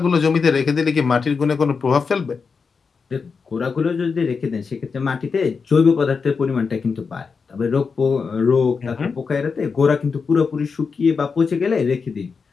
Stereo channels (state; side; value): quieter; right; 5.2 dB